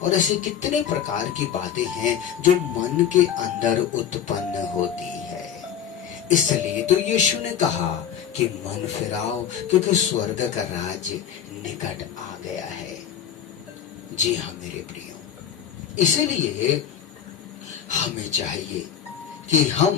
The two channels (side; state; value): right; quieter; 8.9 dB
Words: और ऐसे कितने प्रकार की बातें हैं जो मन के अंदर उत्पन्न होती है। इसलिए तो यीशु ने कहा कि मन फिराओ क्योंकि स्वर्ग का राज निकट आ गया है। जी हाँ मेरे प्रियो, इसलिए हमें चाहिए कि